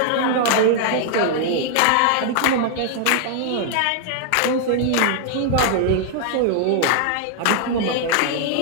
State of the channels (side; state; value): both; different; correlation -0.01